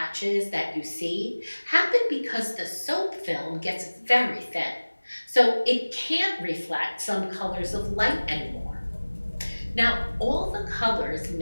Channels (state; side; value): inverted; both; correlation -1.00